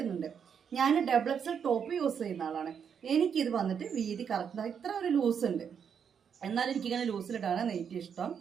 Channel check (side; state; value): left; quieter; 7.4 dB